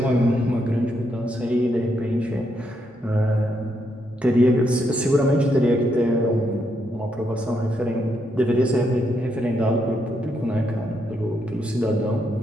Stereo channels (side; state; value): both; normal; correlation 0.78